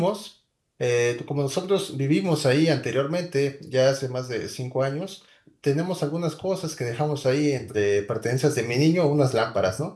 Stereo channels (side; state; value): both; identical; correlation 1.00